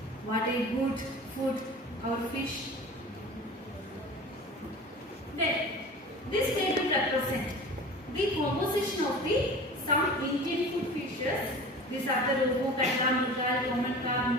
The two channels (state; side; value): normal; both; correlation 0.37